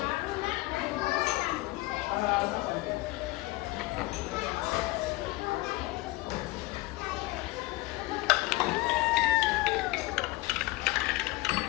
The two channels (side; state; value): right; quieter; 20.3 dB